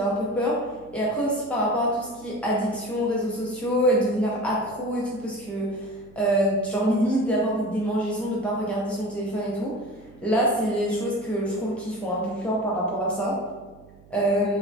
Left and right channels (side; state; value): right; noise; hum, 24 dB below the sound